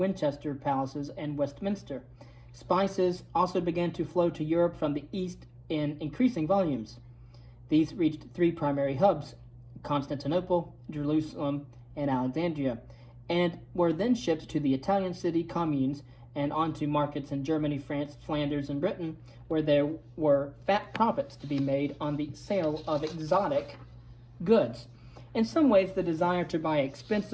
palaces, and Westminster. Spices also began to flow to Europe from the east in increasing volumes. These reached three primary hubs, Constantinople, Jerusalem, and Alexandria, and were then shipped to the Italian city communes and onto markets in Germany, France, Flanders, and Britain, where there were fat profits to be made on the sale of exotic goods. In some ways, the desire to buy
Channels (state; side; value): identical; both; correlation 1.00